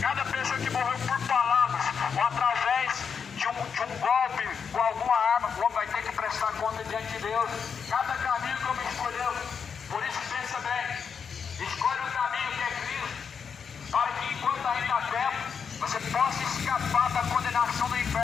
Cada pessoa que morreu por palavras ou através de um golpe com alguma arma, o homem vai ter que prestar conta diante de Deus. Cada caminho que o homem escolheu. Por isso pensa bem, escolhe o caminho que é Cristo, para que enquanto ainda há tempo, você possa escapar da condenação do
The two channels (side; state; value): right; quieter; 6.5 dB